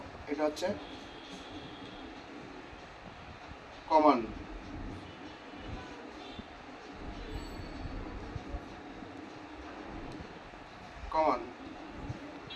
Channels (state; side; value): identical; both; correlation 1.00